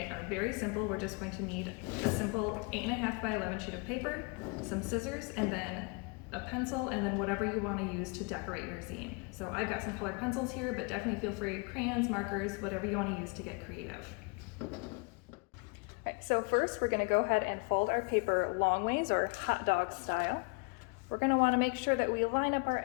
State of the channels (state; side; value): quieter; right; 31.7 dB